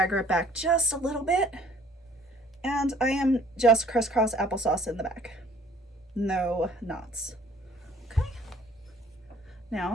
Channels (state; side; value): normal; both; correlation 0.55